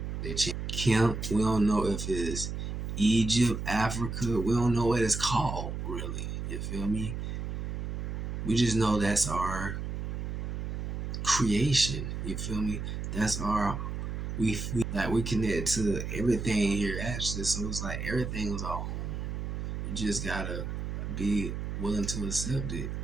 They changed Kemp. We don't know if it's Egypt, Africa. We don't know what it's called really. You feel me? We just know that's our creation. You feel me? That's our we connect to everything here actually. So it's like everything was our home. You just gotta be willing to accept it.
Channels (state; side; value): noise; right; hum, 4 dB below the sound